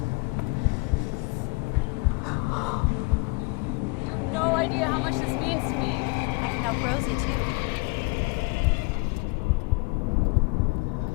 You have no idea how much this means to me. I can help Rosie too.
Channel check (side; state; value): right; quieter; 28.4 dB